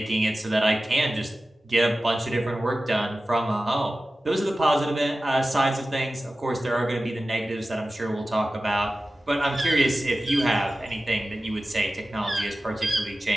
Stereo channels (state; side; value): normal; both; correlation 0.95